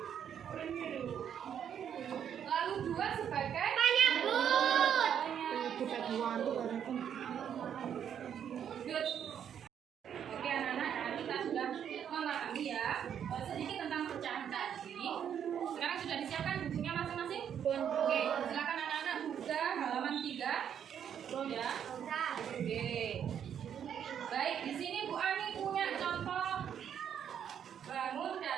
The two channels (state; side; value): quieter; left; 8.8 dB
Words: Lalu 2 sebagai penyebut. Good. Oke anak-anak, kita sudah memahami ya sedikit tentang pecahan tadi. Sekarang sudah disiapkan bukunya masing-masing? Oke, silakan anak-anak buka halaman 3. Ya. Oke. Baik, di sini Bu Ani punya contoh bangun